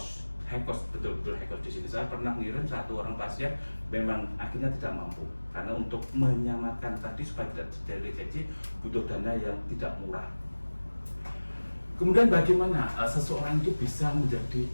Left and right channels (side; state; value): both; inverted; correlation -1.00